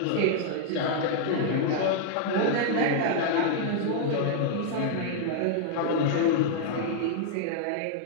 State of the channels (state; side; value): different; both; correlation -0.01